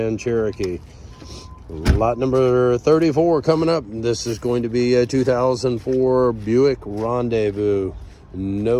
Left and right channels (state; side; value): identical; both; correlation 1.00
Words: Cherokee. Lot number 34 coming up. This is going to be a 2004 Buick Rendezvous.